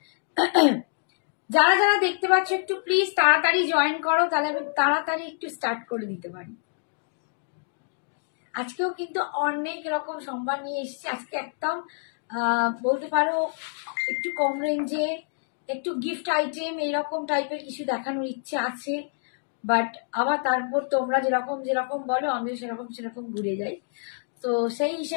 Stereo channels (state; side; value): silent; right; digital silence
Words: যারা যারা দেখতে পাচ্ছ একটু প্লিজ তাড়াতাড়ি জয়েন করো, তাহলে আমি তাড়াতাড়ি একটু স্টার্ট করে দিতে পারি। আজকেও কিন্তু অনেক রকম সম্ভার নিয়ে এসেছি। আজকে একদম বলতে পারো একটু কম রেঞ্জে একটু গিফট আইটেম এইরকম টাইপের কিছু দেখানোর ইচ্ছে আছে, বাট আবার তারপর তোমরা যেরকম যেরকম বলো আমিও সেরকম সেরকম ঘুরে যাই, তো সেই